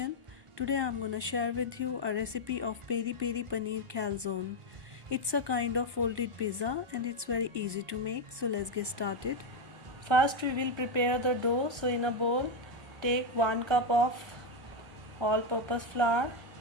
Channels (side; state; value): left; late; 1.1 ms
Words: Today I'm gonna share with you a recipe of peri peri paneer calzone. It's a kind of folded pizza and it's very easy to make, so let's get started. First we will prepare the dough. So in a bowl take 1 cup of all-purpose flour.